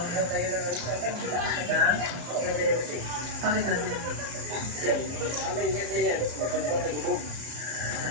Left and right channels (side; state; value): left; late; 34 ms